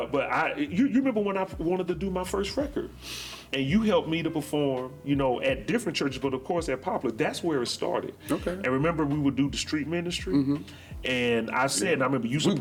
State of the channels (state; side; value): identical; both; correlation 1.00